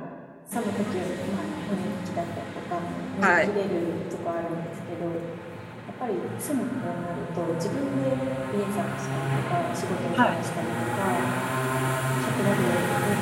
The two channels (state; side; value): identical; both; correlation 1.00